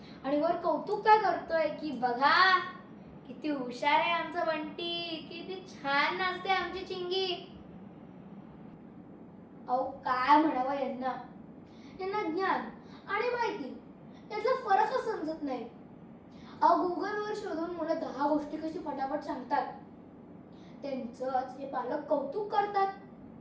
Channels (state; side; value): identical; both; correlation 1.00